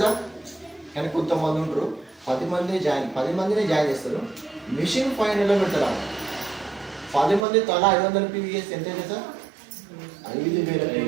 సార్. కానీ కొంతమంది ఉంటారు 10 మందిని జాయిన్ చేస్తారు, మిషన్ ఫైనల్లో పెడతారు. 10 మంది తలా 500 పీవీ చేస్తే ఎంత అయితే సార్? 5,000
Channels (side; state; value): left; drops out; at 7.5 s